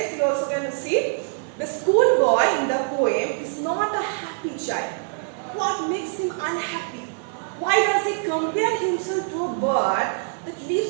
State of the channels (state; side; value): silent; left; 57 dB below the other